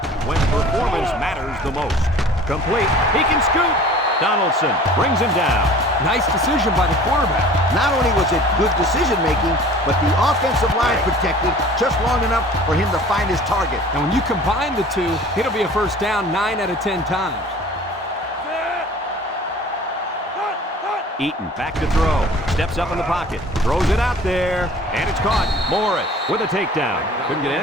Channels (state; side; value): normal; both; correlation 0.46